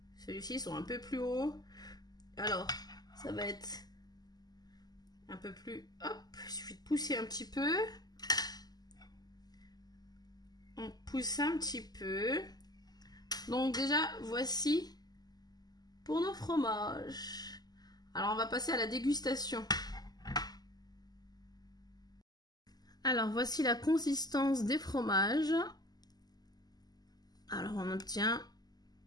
celui-ci sont un peu plus hauts, alors ça va être un peu plus... Hop, il suffit de pousser un petit peu. On pousse un petit peu. Donc déjà, voici pour nos fromages. Alors, on va passer à la dégustation. Alors, voici la consistance des fromages. Alors, on obtient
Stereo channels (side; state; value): right; late; 0.20 ms